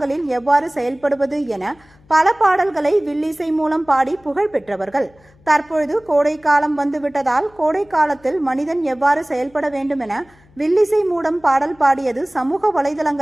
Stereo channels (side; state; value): left; noise; hum, 29 dB below the sound